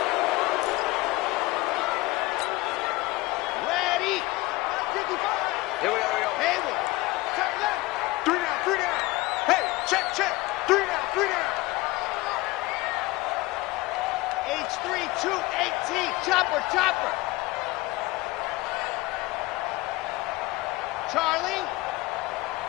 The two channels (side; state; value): right; quieter; 20.7 dB